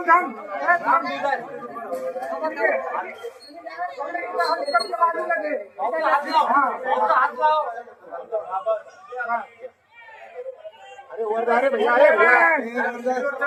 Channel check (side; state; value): both; identical; correlation 1.00